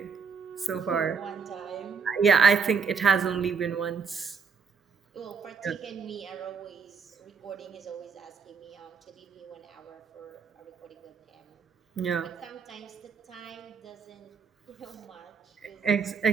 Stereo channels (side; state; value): left; quieter; 5.8 dB